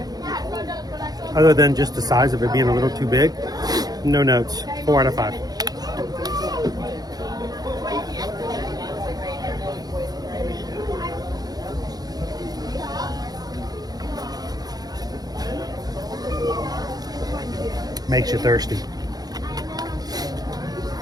other than just the size of it being a little too big, no notes. 4 out of 5. Makes you thirsty.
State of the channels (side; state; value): left; late; 0.19 ms